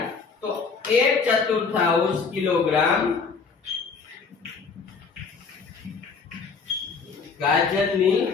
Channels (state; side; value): quieter; right; 5.1 dB